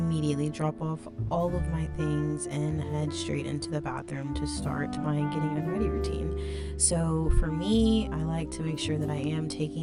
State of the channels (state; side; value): identical; both; correlation 1.00